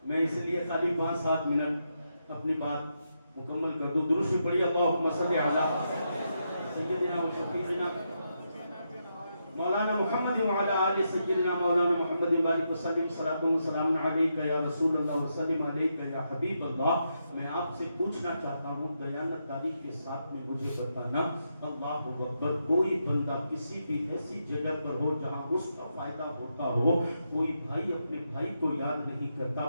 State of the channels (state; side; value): inverted; both; correlation -0.83